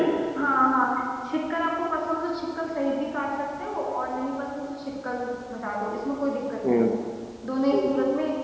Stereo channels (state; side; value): identical; both; correlation 1.00